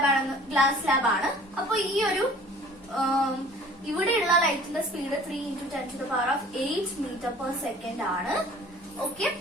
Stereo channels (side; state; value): both; normal; correlation 0.48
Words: ലാബാണ്. അപ്പൊ ഈ ഒരു ഇവിടെയുള്ള ലൈറ്റിന്റെ സ്പീഡ് 3 × 10⁸ മീറ്റർ/സെക്കൻഡ് ആണ്. ഓക്കെ,